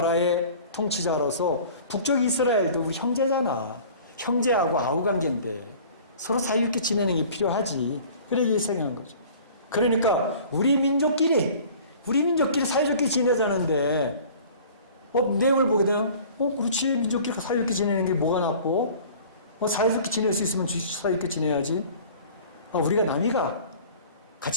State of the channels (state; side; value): inverted; both; correlation -0.46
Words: 통치자로서 북쪽 이스라엘도 우리 형제잖아. 형제하고 아우 관계인데 서로 사이좋게 지내는 게 필요하지. 그렇게 생각한 거죠. 그러니까 우리 민족끼리 사이좋게 지내자는데 내용을 보게 되면 그렇지 민족끼리 사이좋게 지내는 게 뭐가 나쁘고 사이좋게 지낼 수 있으면 사이좋게 지내야지. 우리가 나니가